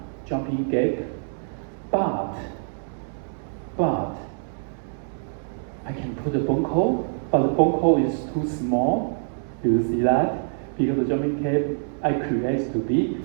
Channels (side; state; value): left; silent; digital silence